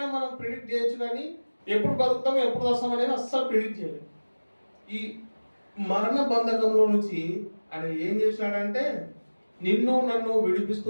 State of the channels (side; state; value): both; inverted; correlation -1.00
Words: మనం ప్రిడిక్ట్ చేయొచ్చు కానీ ఎప్పుడు బతుకుతామో ఎప్పుడు వస్తాం అనేది అస్సలు ప్రిడిక్ట్ చేయలేదు. ఈ మరణ బంధకంలో నుంచి ఆయన ఏం చేసినాడంటే నిన్ను నన్ను విడిపిస్తూ